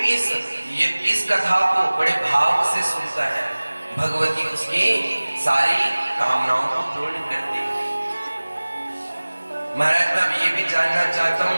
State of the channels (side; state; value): both; inverted; correlation -1.00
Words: इस कथा को बड़े भाव से सुनता है, भगवती उसकी सारी कामनाओं को पूर्ण करती है। महाराज मैं ये भी जानना चाहता